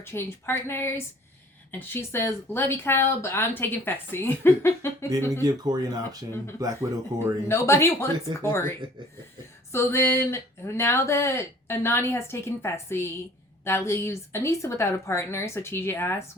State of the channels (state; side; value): normal; both; correlation 0.52